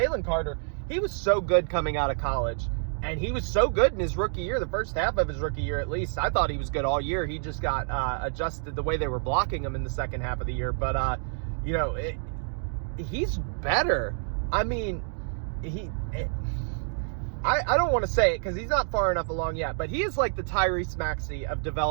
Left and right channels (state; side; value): silent; left; 59 dB below the other